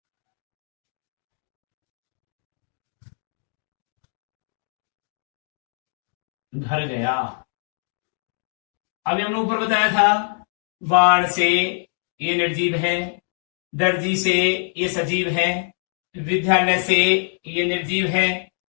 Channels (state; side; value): silent; right; 63 dB below the other